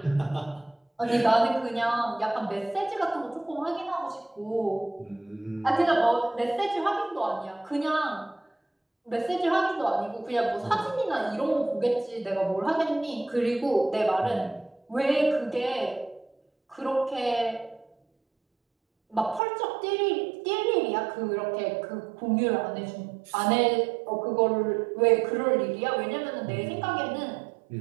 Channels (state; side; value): drops out; left; at 19.4 s